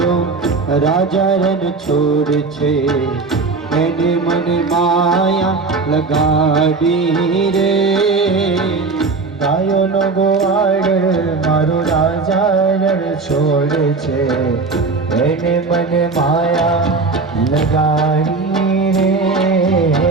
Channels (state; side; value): quieter; left; 4.1 dB